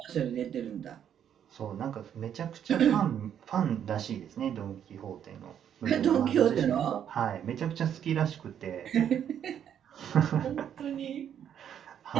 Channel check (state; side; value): quieter; left; 9.3 dB